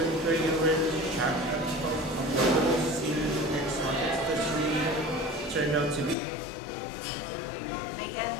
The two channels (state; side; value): drops out; right; at 6.2 s